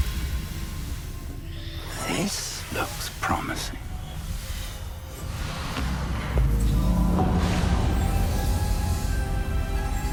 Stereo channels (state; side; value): identical; both; correlation 1.00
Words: This looks promising.